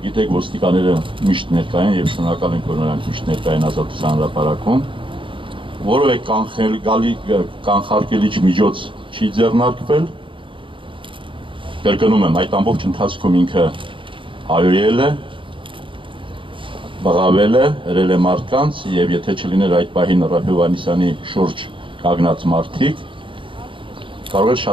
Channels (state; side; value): late; left; 0.25 ms